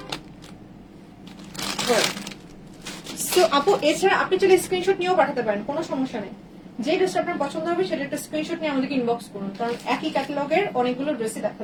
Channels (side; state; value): both; identical; correlation 1.00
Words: সো আপু এছাড়া আপনি চাইলে স্ক্রিনশট নিয়েও পাঠাতে পারেন, কোনো সমস্যা নেই। যে ড্রেসটা আপনার পছন্দ হবে সেটা একটা স্ক্রিনশট নিয়ে আমাদেরকে ইনবক্স করুন, কারণ একই ক্যাটালগের অনেকগুলো ড্রেসই